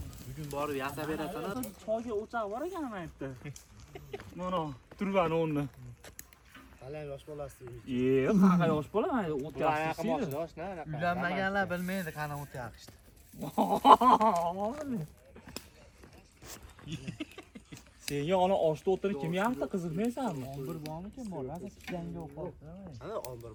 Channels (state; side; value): identical; both; correlation 1.00